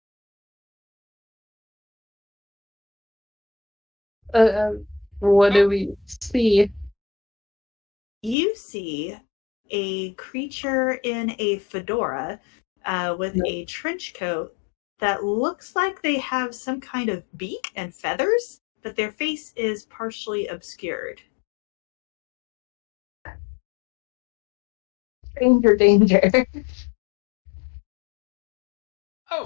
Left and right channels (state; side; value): drops out; right; at 8.3 s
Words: What do we see? You see a creature in a fedora with a trench coat that looks like they have some kind of beak and feathers, but their face is partially obscured. Danger.